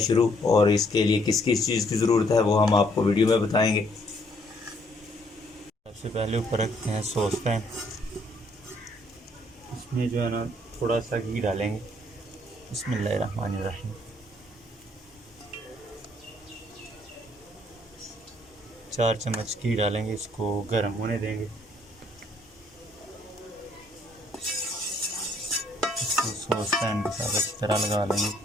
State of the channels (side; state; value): both; normal; correlation 0.66